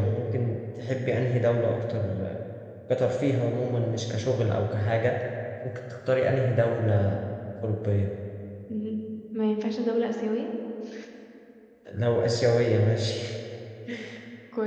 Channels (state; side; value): identical; both; correlation 1.00